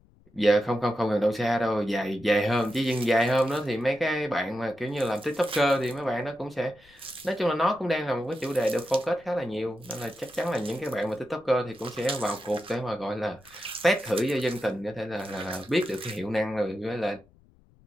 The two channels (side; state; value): left; noise; rumble, 29 dB below the sound